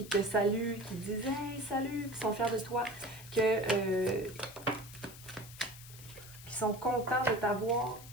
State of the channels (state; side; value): noise; left; hiss, 17 dB below the sound